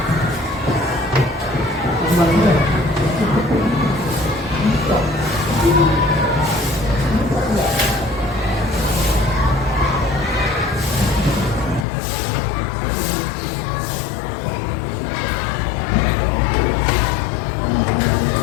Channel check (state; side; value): drops out; right; at 11.9 s